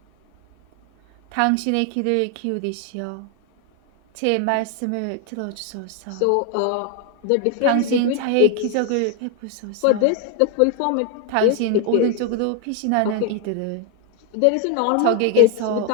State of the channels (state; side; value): different; both; correlation 0.01